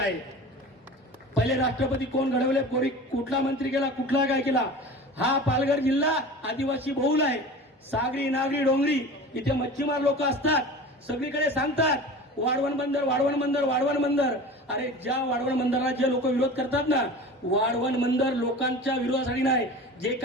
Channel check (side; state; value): both; normal; correlation 0.36